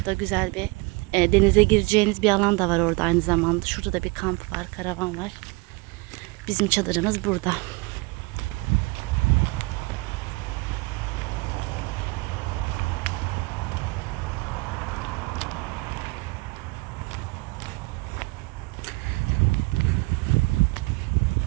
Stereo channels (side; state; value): left; quieter; 25.8 dB